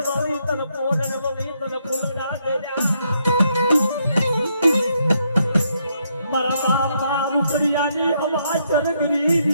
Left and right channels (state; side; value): inverted; both; correlation -0.76